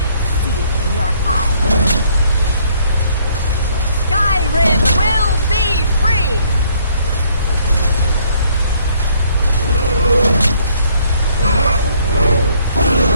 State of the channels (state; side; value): inverted; both; correlation -0.64